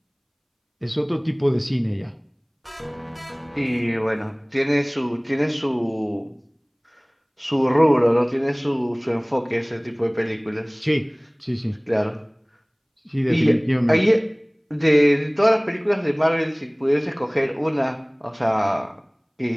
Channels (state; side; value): identical; both; correlation 1.00